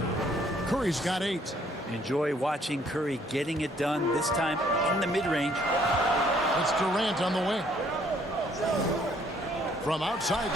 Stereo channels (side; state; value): both; normal; correlation 0.64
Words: Curry's got 8. Enjoy watching Curry getting it done, this time in the mid-range. It's Durant on the wing. From outside